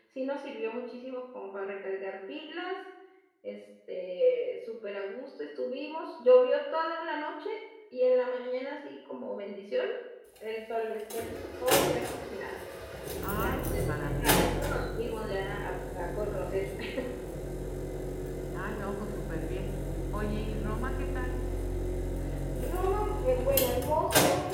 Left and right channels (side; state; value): both; identical; correlation 1.00